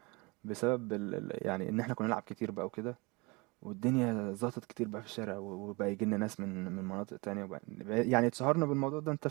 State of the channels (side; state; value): left; quieter; 26.9 dB